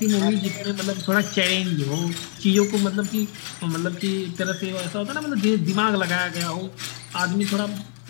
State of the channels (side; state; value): right; silent; 56 dB below the other